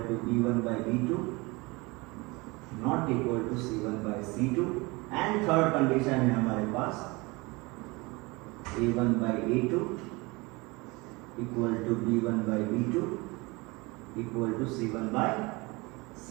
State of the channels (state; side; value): quieter; left; 24.8 dB